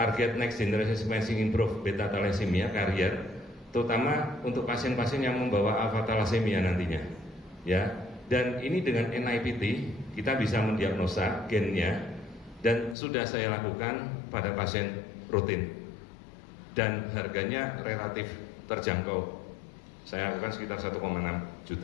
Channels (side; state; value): right; drops out; at 13.0 s